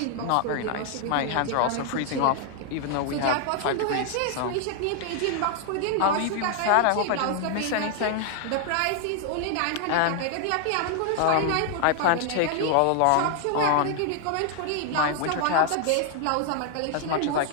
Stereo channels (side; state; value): both; different; correlation 0.00